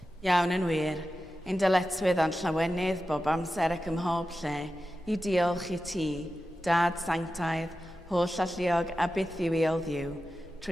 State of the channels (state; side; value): normal; both; correlation 0.92